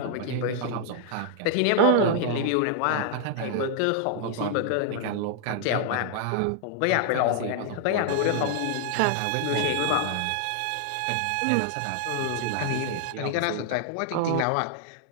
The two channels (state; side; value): different; both; correlation -0.01